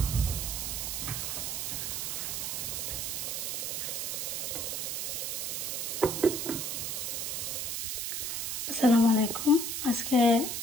আসসালামু আলাইকুম। আজকে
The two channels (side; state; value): right; noise; hiss, 2 dB below the sound